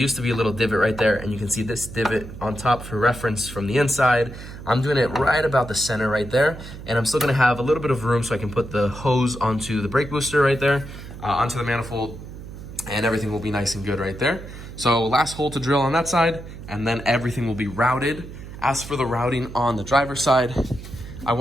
to be a little divot right there, and you can see this divot on top for reference from the inside. I'm doing it right about the center right there, and I'm still gonna have a little bit of room so I can put the hose onto the brake booster right there, onto the manifold, and everything will be nice and good right there. So last hole to drill on that side, and then everything will be routed. As for the routing on the driver's side, I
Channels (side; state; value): right; noise; hum, 13 dB below the sound